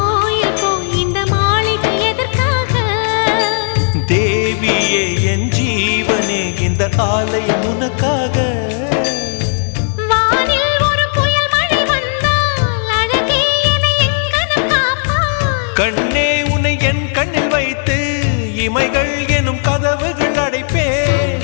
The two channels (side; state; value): right; silent; digital silence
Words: போய் இந்த மாளிகை எதற்காக தேவியே என் ஜீவனே இந்த ஆலயம் உனக்காக வானில் ஒரு புயல் மழை வந்தால் அழகே என்னை எங்கனம் காப்பாய் கண்ணே உன்னை என் கண்ணில் வைத்து இமைகள் எனும் கதவுகள் அடைப்பேன்